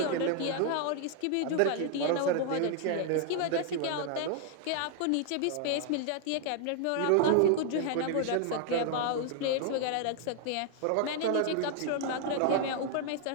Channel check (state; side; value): different; both; correlation 0.00